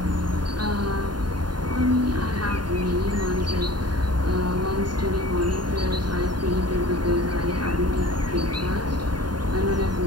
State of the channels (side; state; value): left; late; 0.70 ms